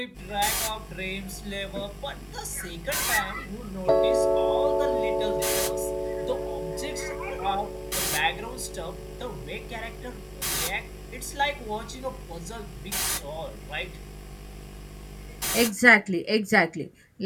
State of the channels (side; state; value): both; identical; correlation 1.00